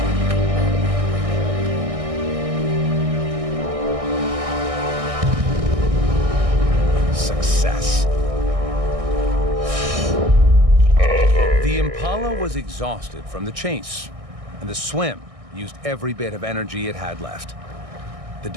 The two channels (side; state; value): left; late; 1.6 ms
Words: The impala was exhausted from the chase, and the swim used every bit of energy it had left. The